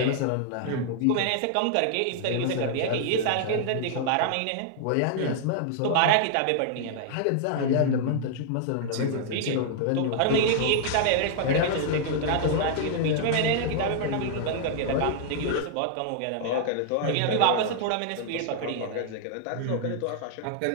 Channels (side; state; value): both; different; correlation -0.01